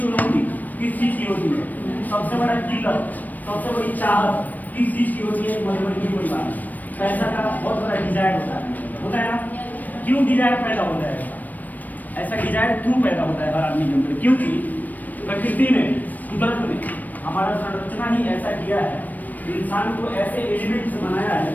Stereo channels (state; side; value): late; right; 0.084 ms